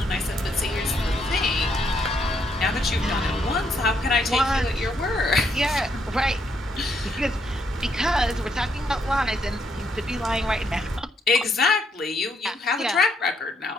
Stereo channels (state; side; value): normal; both; correlation 0.74